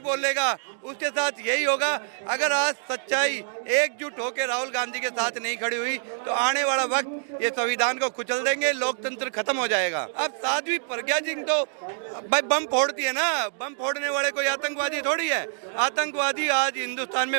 उसके साथ यही होगा। अगर आज सच्चाई एकजुट होकर राहुल गांधी के साथ नहीं खड़ी हुई तो आने वाला वक्त ये संविधान को कुचल देंगे, लोकतंत्र खत्म हो जाएगा। अब साध्वी प्रज्ञा सिंह तो भाई बम फोड़ती है ना, बम फोड़ने वाले कोई आतंकवादी थोड़ी है। आतंकवादी आज हिंदुस्तान में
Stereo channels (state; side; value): silent; left; digital silence